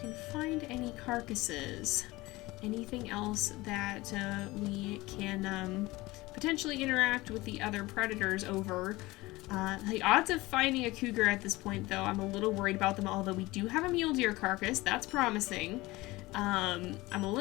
find any carcasses, anything else that we can potentially interact with the other predators over. The odds of finding a cougar at this point, though, I'm a little worried about them, although we do have a mule deer carcass. That's promising. I'm a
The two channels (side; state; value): right; quieter; 20.4 dB